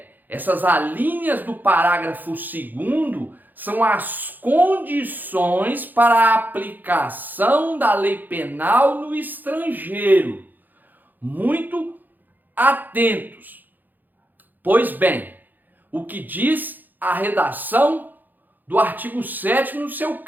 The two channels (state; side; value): late; left; 0.086 ms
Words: Essas alíneas do parágrafo 2º são as condições para a aplicação da lei penal no estrangeiro. Muito atentos. Pois bem, o que diz a redação do artigo 7º no seu